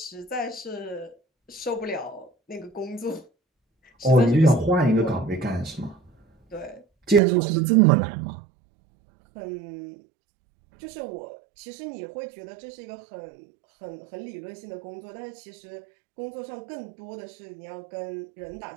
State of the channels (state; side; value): drops out; left; at 7.2 s